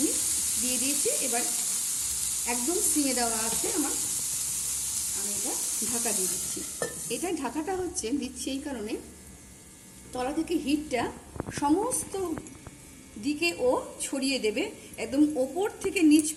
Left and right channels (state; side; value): identical; both; correlation 1.00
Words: দিয়ে দিয়েছি। এবার একদম সিমে দেওয়া আছে আমার, আমি এটা ঢাকা দিয়ে দিচ্ছি। এটা ঢাকাটা দিচ্ছি এই কারণে, তলা থেকে হিটটা সমস্ত দিকে ও ছড়িয়ে দেবে, একদম ওপর থেকে নিচ